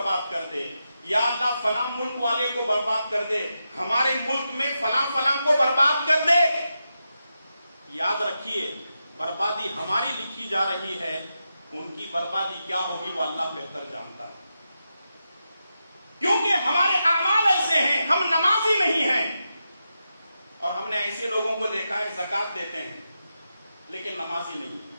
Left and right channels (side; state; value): both; inverted; correlation -0.88